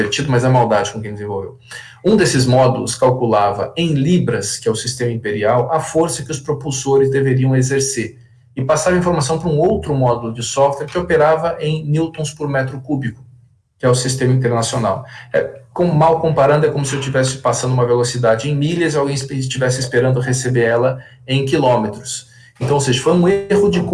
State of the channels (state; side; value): identical; both; correlation 1.00